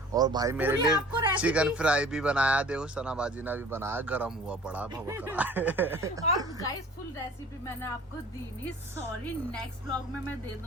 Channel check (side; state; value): both; normal; correlation 0.46